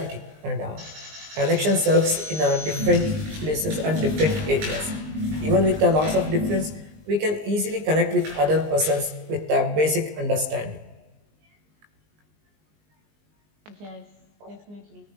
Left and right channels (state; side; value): late; left; 19 ms